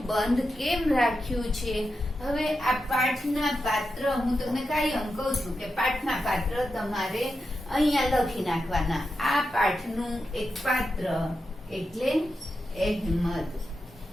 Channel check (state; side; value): normal; both; correlation 0.88